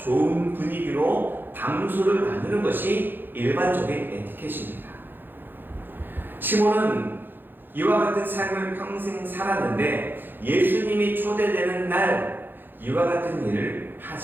분위기로 담소를 나누는 것이 일반적인 에티켓입니다. 시몬은 이와 같은 삶을 평생 살았는데 예수님이 초대되는 날 이와 같은 일을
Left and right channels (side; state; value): left; late; 0.096 ms